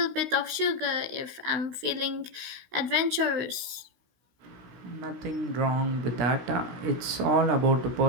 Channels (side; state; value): left; late; 16 ms